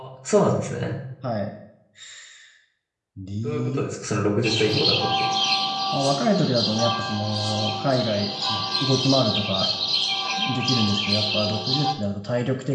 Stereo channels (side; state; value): both; identical; correlation 1.00